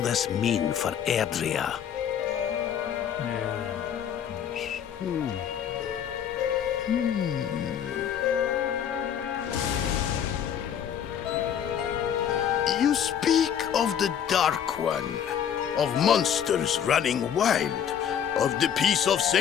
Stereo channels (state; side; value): quieter; right; 8.9 dB